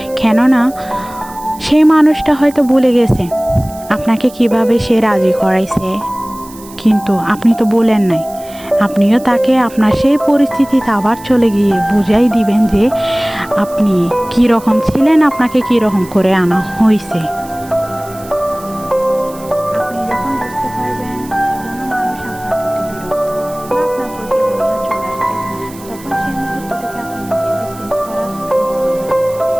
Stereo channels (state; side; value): noise; right; hiss, 20 dB below the sound